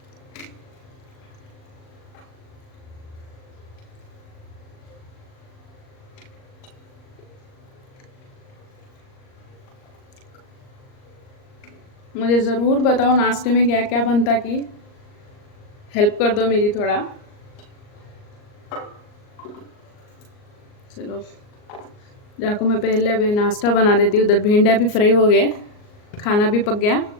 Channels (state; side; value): late; right; 38 ms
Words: मुझे ज़रूर बताओ नाश्ते में क्या क्या बनता की, हेल्प कर दो मेरी थोड़ा। चलो जाको मैं पहले अभी नाश्ता बना देती हूँ। उधर भिंडियाँ भी फ्राई हो गए, खाना भी पक गया,